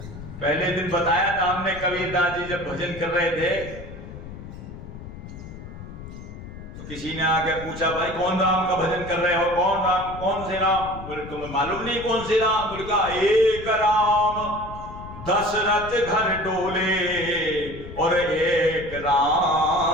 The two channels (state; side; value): noise; left; rumble, 13 dB below the sound